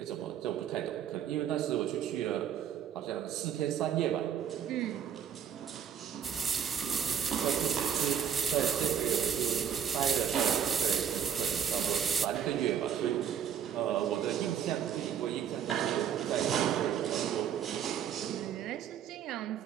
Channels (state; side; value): quieter; left; 8.7 dB